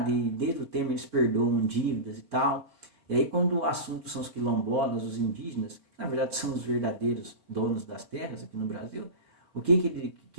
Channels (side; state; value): left; late; 4.8 ms